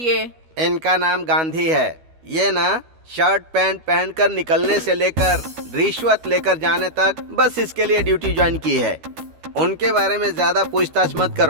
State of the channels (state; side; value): late; left; 12 ms